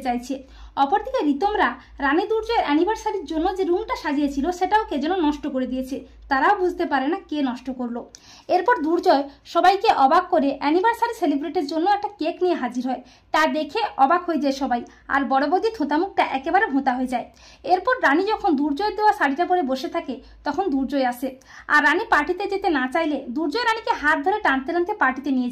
চাইছে। অপরদিকে রিতমরা রানী দুর্জয়ের অ্যানিভার্সারির জন্য যে রুমটা সাজিয়েছিল সেটাও কে যেন নষ্ট করে দিয়েছে, তারাও বুঝতে পারে না কে নষ্ট করলো। এরপর দুর্জয় সবাইকে অবাক করে অ্যানিভার্সারি সেলিব্রেটের জন্য একটা কেক নিয়ে হাজির হয়, তা দেখে অবাক হয়ে যায় সবাই, আর বড় বৌদি থোঁতামুখটা একেবারে ভোঁতা হয়ে যায়। এরপর রানী যখন দুর্জয়ের দেওয়া শাড়িটা পরে বসে থাকে তখন দুর্জয় আসে, আর রানী পার্টিতে যেতে না চাইলে দুর্জয় রানীকে হাত ধরে টানতে টানতে পার্টিতে নিয়ে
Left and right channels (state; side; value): identical; both; correlation 1.00